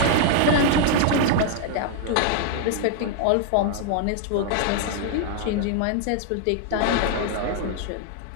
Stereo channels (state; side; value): different; both; correlation 0.00